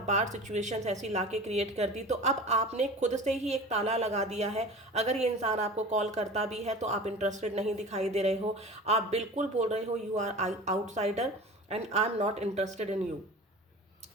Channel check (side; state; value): both; normal; correlation 0.37